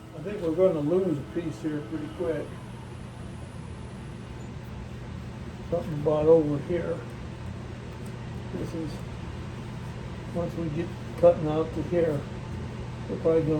I think we're going to lose a piece here pretty quick. Something about over here. This is, once we get cutting out to here, we're probably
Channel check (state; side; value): identical; both; correlation 1.00